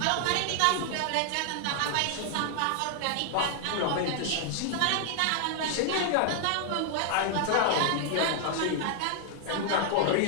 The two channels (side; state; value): both; different; correlation 0.00